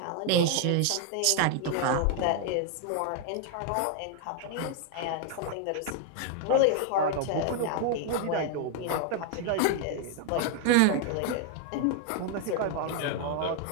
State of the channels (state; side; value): different; both; correlation 0.00